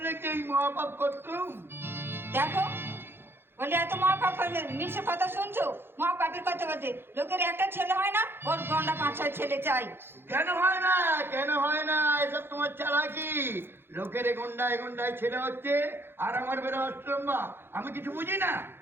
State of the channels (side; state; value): left; late; 0.11 ms